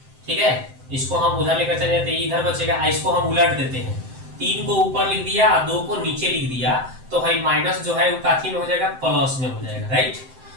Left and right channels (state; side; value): late; left; 7.7 ms